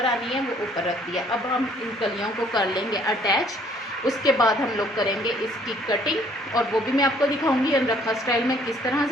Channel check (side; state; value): both; normal; correlation 0.61